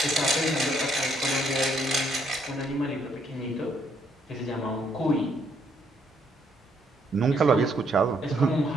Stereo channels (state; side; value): normal; both; correlation 0.70